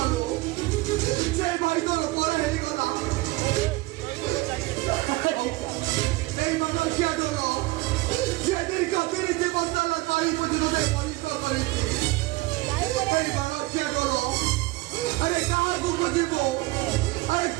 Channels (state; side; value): quieter; left; 20.6 dB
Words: ସେ ଭାଇ ତୋର ପର ହେଇଗଲା এই মানুষিয়া ঢোল যেদিন কতরি জীবন তারা তাই পর্যন্ত পরিষ্কার করেছে এই মানুষিয়া ঢোল আরে কাহাକୁ বুঝিব আরে